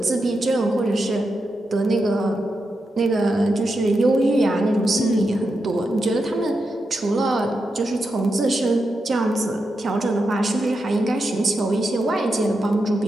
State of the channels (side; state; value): both; normal; correlation 0.87